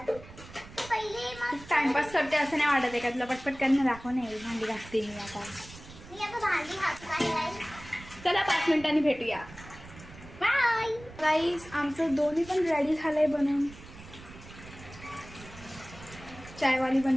पहिले मग टाइमपास करते असं नाही वाटत आहे का तुला? पटपट करणं दाखव. नाही भांडी घासते मी आता. मी आता भांडी घासत आहे. चला 5 मिनिटांनी भेटूया. बाय गाईस, आमचं दोन्ही पण रेडी झालंय बनवून. चायवाली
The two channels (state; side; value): noise; right; rumble, 17 dB below the sound